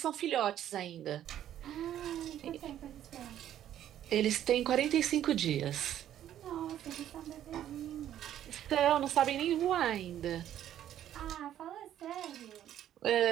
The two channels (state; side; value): quieter; left; 11.3 dB